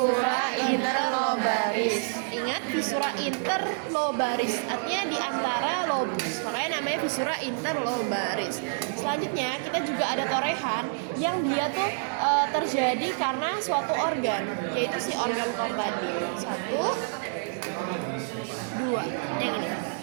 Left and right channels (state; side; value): silent; left; digital silence